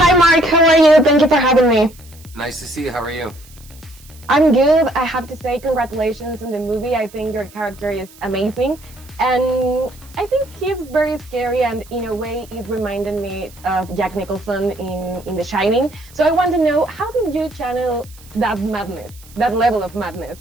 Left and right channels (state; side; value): noise; right; hiss, 24 dB below the sound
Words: Mark. How are you? Thank you for having me. Nice to see you. How are you? I'm good. I have to say congratulations on the movie. I think your character is amazing. And I think he's very scary, and in a way it reminded me of Jack Nicholson in The Shining. So I want to know, how did you channel that madness, that level of madness?